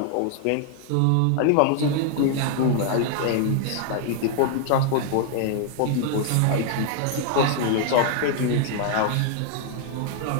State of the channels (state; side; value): different; both; correlation 0.00